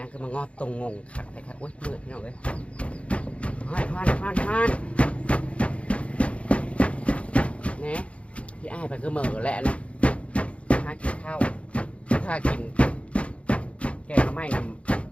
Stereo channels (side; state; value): right; late; 0.062 ms